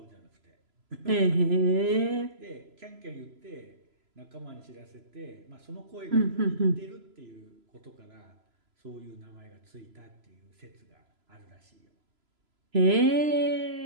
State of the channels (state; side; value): late; left; 3.0 ms